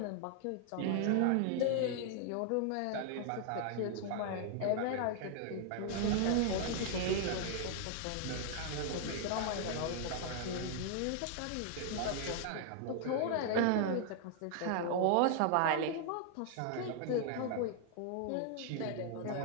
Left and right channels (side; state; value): both; different; correlation 0.00